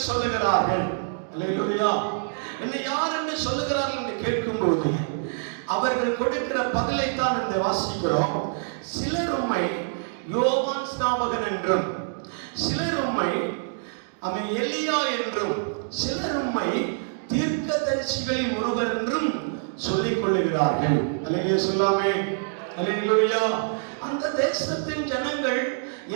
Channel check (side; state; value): left; silent; digital silence